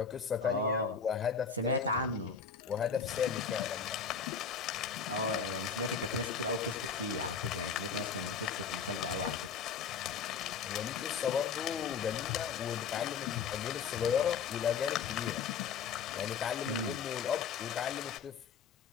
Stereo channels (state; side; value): quieter; right; 6.2 dB